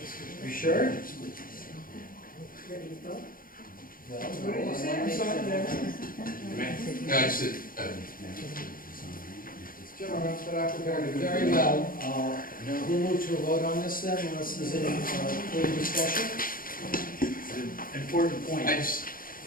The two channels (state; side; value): late; right; 0.41 ms